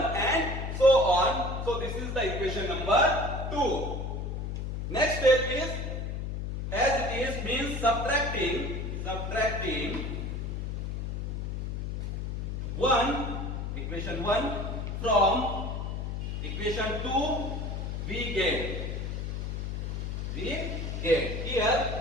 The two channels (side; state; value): left; noise; hum, 4 dB below the sound